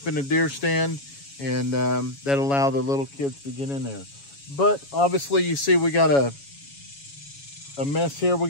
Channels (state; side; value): late; right; 7.2 ms